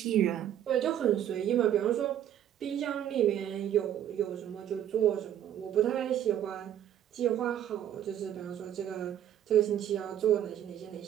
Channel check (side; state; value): left; quieter; 10.7 dB